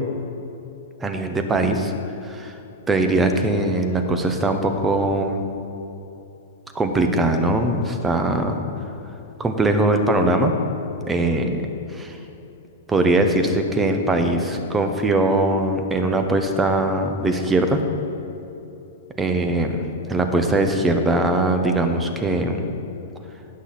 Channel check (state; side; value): normal; both; correlation 0.30